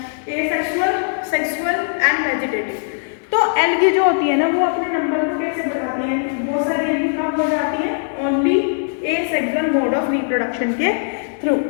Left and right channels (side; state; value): right; silent; digital silence